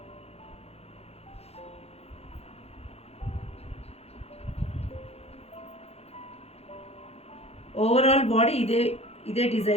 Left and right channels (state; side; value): late; right; 0.30 ms